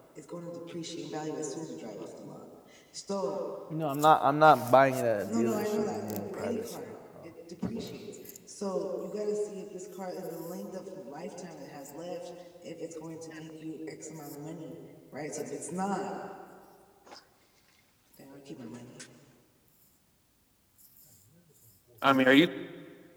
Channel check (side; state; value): both; identical; correlation 1.00